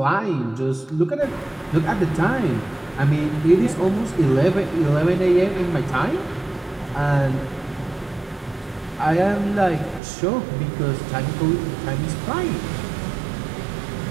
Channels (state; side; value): drops out; left; at 10.0 s